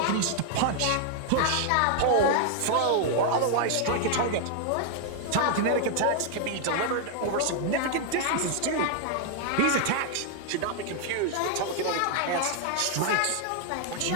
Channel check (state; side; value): different; both; correlation 0.00